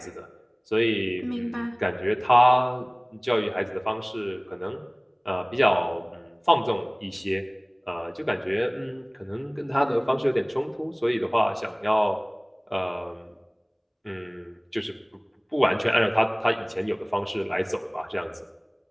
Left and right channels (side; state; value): both; identical; correlation 1.00